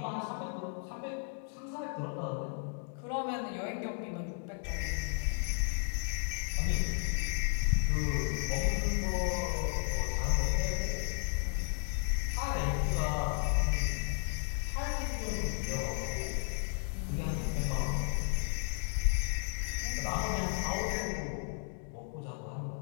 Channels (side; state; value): right; silent; 55 dB below the other